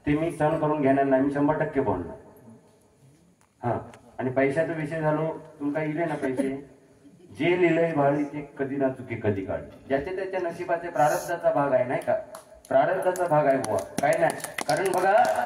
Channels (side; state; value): both; identical; correlation 1.00